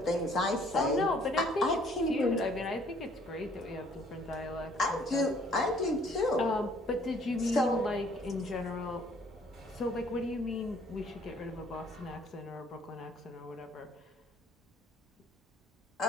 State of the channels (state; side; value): normal; both; correlation 0.60